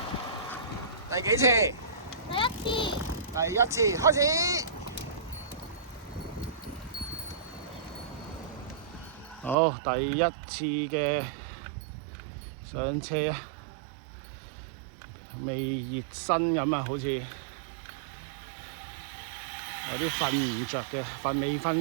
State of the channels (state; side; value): drops out; left; at 9.6 s